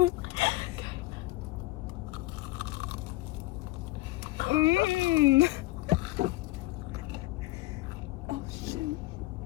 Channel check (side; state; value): right; quieter; 19.3 dB